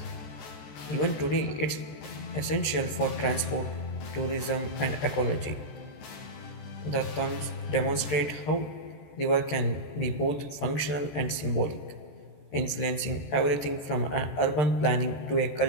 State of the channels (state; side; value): late; right; 14 ms